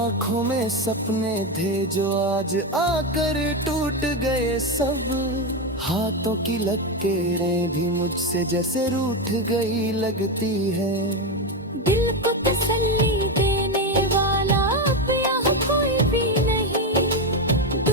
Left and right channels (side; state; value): both; normal; correlation 0.11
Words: में सपने थे जो आज आकर टूट गए सब, हाथों की लकीरें भी मुझसे जैसे रूठ गई लगती है। दिल को तसल्ली देने वाला अब यहाँ कोई भी नहीं,